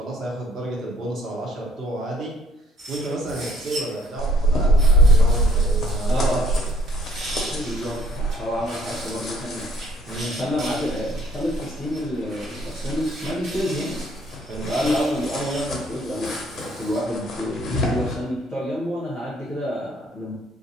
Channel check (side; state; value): both; normal; correlation 0.63